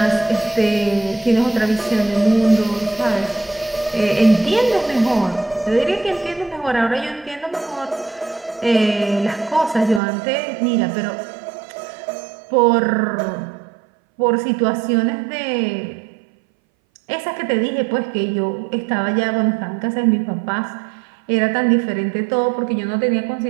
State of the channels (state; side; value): drops out; left; at 10.0 s